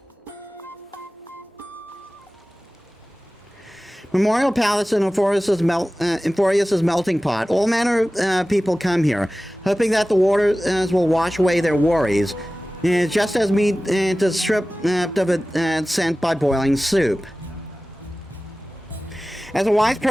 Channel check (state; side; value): normal; both; correlation 0.97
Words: Memorial Palace in Euphorius's melting pot. All manner of people come here, hoping that the waters will wash away their worries, just as meat is stripped of its scent by boiling soup. As a wise